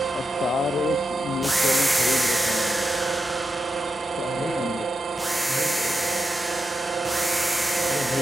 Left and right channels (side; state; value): both; normal; correlation 0.88